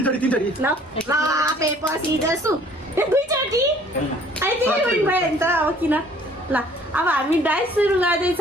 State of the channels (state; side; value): normal; both; correlation 0.56